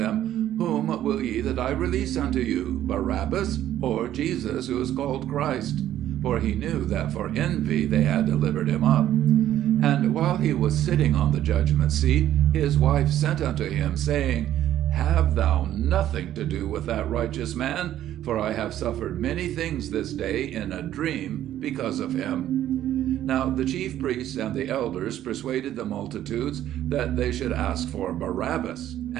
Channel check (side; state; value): left; quieter; 12.2 dB